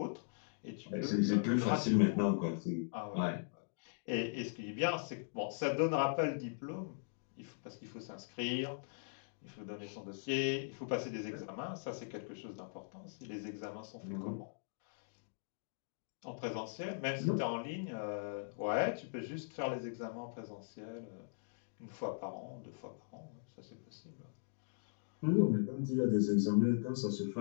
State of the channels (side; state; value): right; silent; digital silence